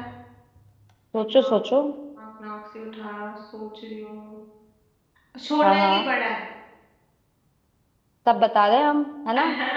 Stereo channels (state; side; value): identical; both; correlation 1.00